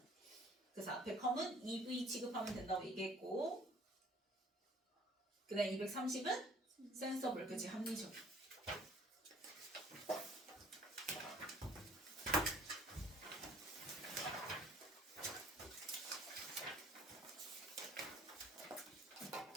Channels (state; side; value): normal; both; correlation 0.55